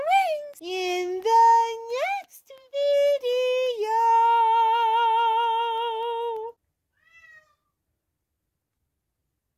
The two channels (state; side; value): identical; both; correlation 1.00